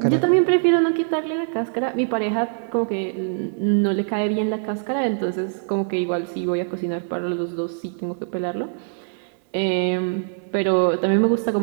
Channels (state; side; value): silent; left; digital silence